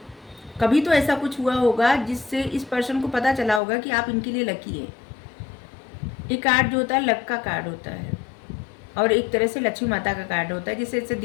कभी तो ऐसा कुछ हुआ होगा जिससे इस पर्सन को पता चला होगा कि आप इनके लिए लकी है। ये कार्ड जो होता है लक का कार्ड होता है और एक तरह से लक्ष्मी माता का कार्ड होता है, जिससे ऐसे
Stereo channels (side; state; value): right; drops out; at 3.6 s